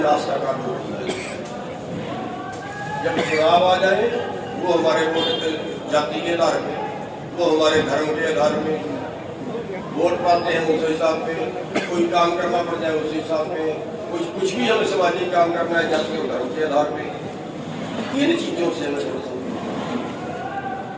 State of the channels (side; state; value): both; identical; correlation 1.00